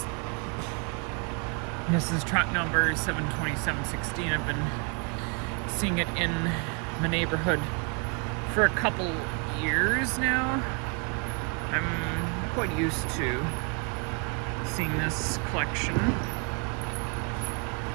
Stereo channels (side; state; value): left; quieter; 35.2 dB